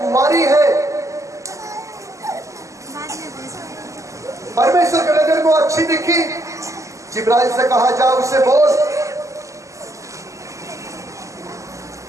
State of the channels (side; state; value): left; late; 0.16 ms